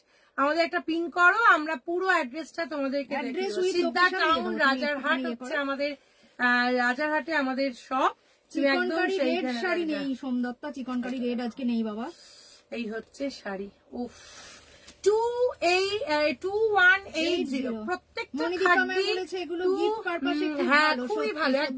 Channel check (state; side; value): identical; both; correlation 1.00